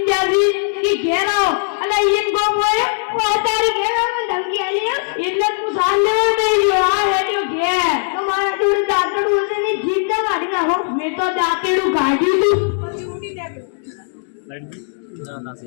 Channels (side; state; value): right; silent; digital silence